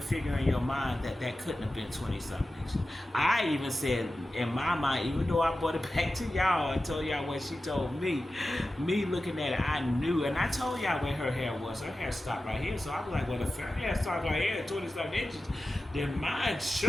figure in your mind that couldn't have been 20-something inches. I even said, in my mind, even though I brought it back to y'all and told y'all what she told me looking at it, I knew. And I told y'all where her hair was. Her hair stopped right here. So I was like, well, if her hair starts right here at 20-something inches, then mine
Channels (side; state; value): both; normal; correlation 0.94